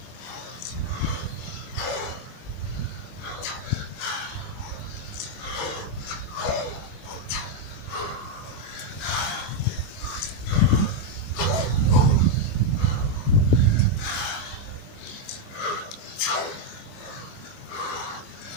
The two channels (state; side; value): late; right; 24 ms